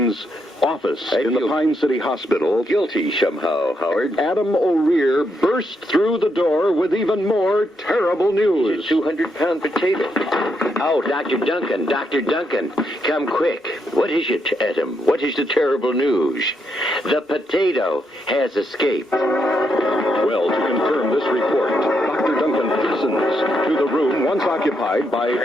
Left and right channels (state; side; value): normal; both; correlation 0.79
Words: office in the Pine City Hospital, guilty somehow, Howard. Adam O'Rear burst through the door with even more terrible news. It's a 200-pound potato. Oh, Dr. Duncan, come quick. What is it, Adam? What is the terrible news? The potato has escaped. Well, to confirm this report, Dr. Duncan hastens to the room once occupied by